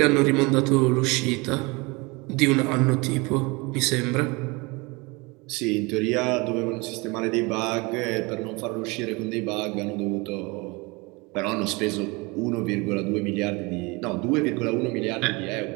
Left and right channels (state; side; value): quieter; left; 26.3 dB